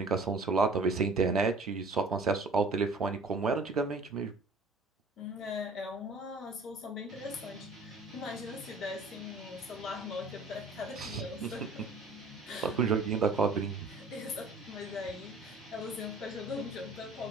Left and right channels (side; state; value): left; quieter; 3.1 dB